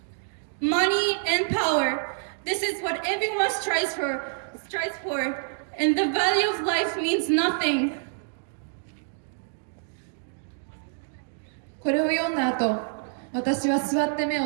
Money and power, this is what everyone strives for, and the value of life means nothing. これを読んだ後、私は座って目を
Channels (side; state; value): left; silent; digital silence